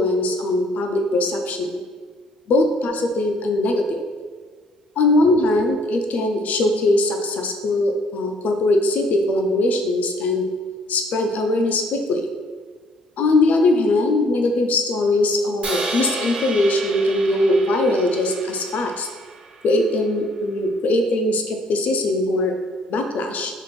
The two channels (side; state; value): both; normal; correlation 0.62